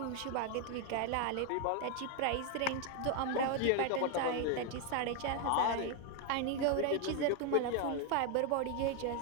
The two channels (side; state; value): both; different; correlation 0.01